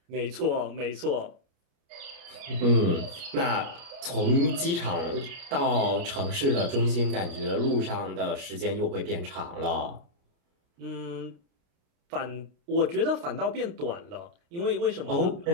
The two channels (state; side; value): late; left; 29 ms